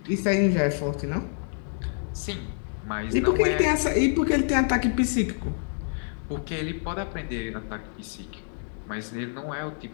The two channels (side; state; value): right; silent; 60 dB below the other